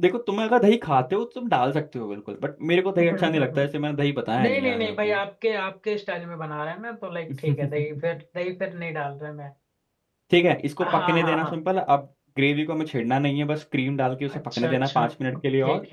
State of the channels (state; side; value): identical; both; correlation 1.00